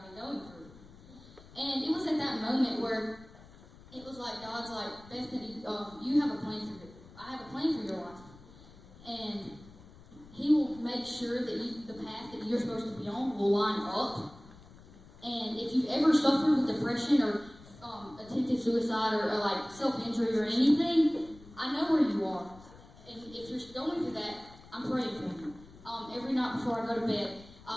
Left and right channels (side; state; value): left; noise; rumble, 21 dB below the sound